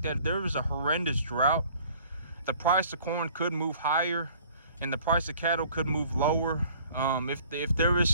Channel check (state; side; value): inverted; both; correlation -0.54